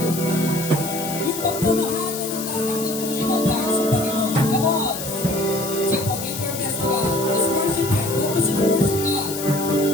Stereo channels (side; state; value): left; noise; hiss, 7 dB below the sound